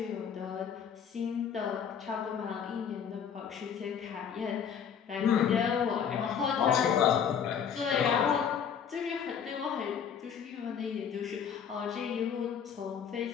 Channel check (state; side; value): quieter; right; 7.6 dB